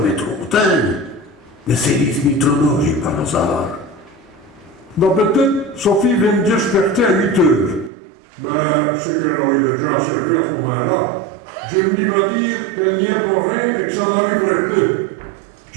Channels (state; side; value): drops out; left; at 7.9 s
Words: trop tard, mais c'est les trop j'ai par hasard. D'habitude, Sophie vient me desperter à 8 heures. Ben, c'est qu'elle aurait déjà à servir à ce moment-là. Je me va dire qu'elle n'y est pour rien et que ça n'arriverait pas.